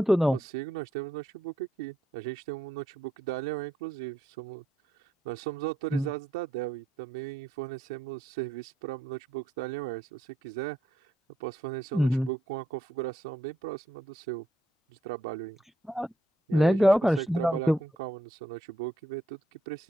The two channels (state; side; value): normal; both; correlation 0.77